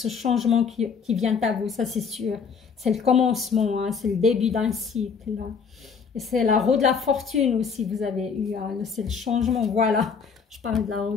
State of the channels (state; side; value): quieter; right; 5.9 dB